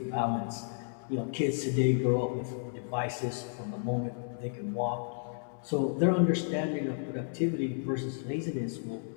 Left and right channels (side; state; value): right; silent; 56 dB below the other